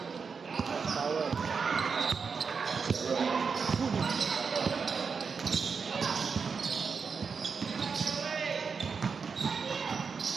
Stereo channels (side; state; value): left; quieter; 5.5 dB